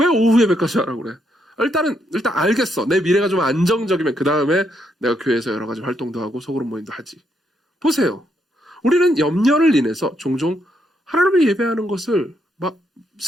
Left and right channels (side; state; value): both; normal; correlation 0.77